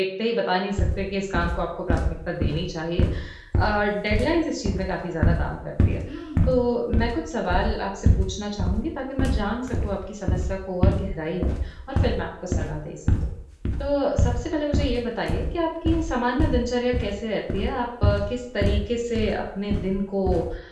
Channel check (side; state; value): both; identical; correlation 1.00